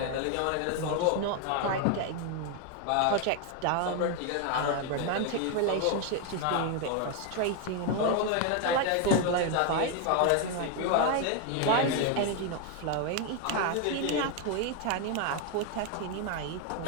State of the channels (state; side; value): different; both; correlation 0.01